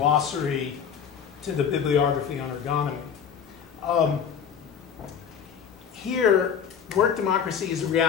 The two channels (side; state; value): right; quieter; 7.5 dB